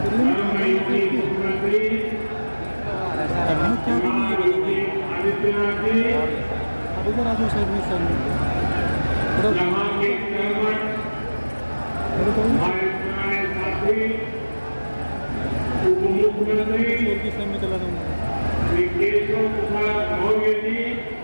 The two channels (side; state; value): both; inverted; correlation -1.00